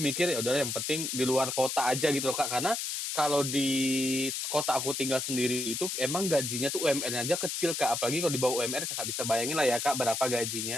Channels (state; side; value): noise; left; hiss, 3 dB below the sound